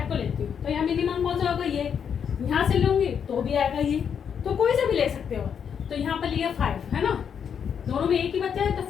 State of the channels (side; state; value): right; quieter; 7.6 dB